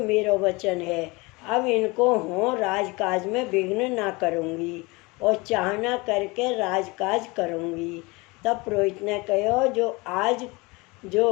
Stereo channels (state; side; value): quieter; right; 25.2 dB